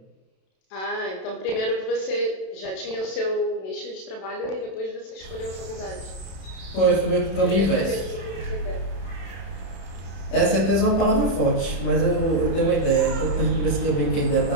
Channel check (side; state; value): right; late; 31 ms